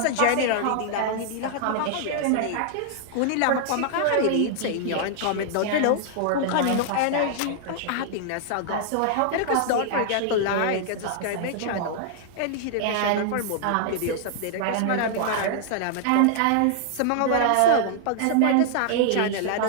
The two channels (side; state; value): both; different; correlation -0.01